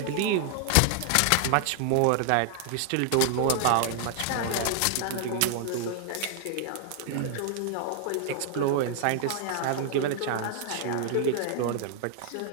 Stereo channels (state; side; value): different; both; correlation 0.00